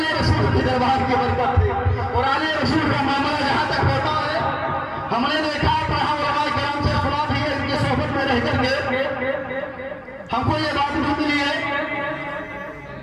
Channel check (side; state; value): both; identical; correlation 1.00